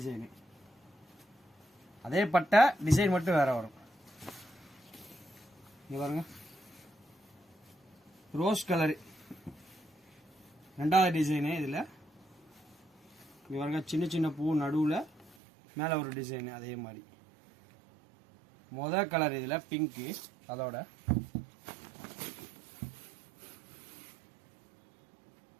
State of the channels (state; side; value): drops out; left; at 15.4 s